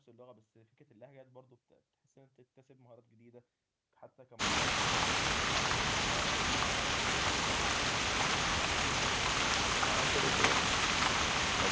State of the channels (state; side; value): identical; both; correlation 1.00